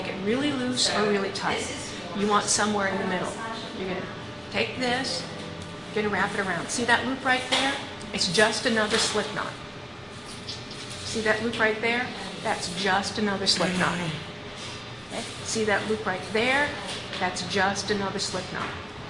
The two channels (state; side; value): identical; both; correlation 1.00